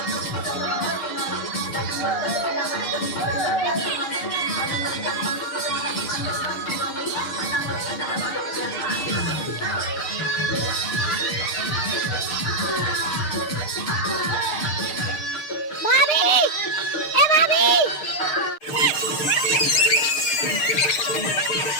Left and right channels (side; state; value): right; late; 6.6 ms